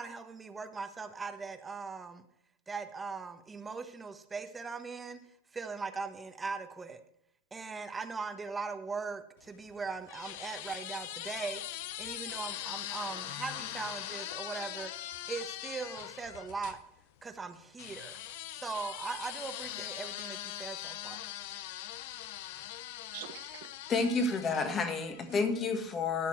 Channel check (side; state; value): both; normal; correlation 0.53